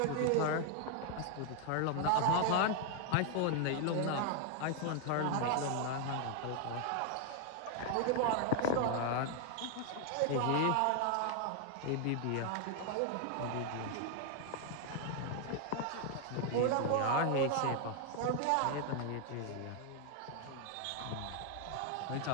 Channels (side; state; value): both; different; correlation 0.00